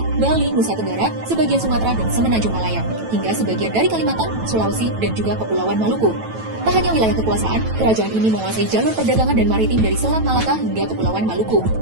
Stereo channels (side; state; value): left; late; 9.1 ms